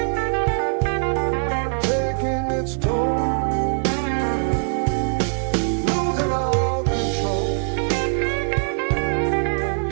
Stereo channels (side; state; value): left; silent; digital silence